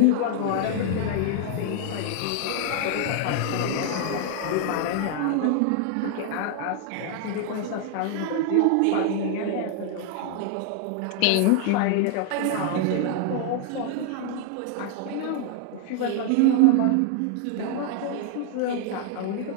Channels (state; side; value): different; both; correlation 0.00